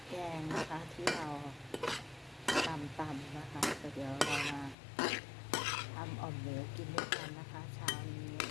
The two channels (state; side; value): drops out; right; at 4.8 s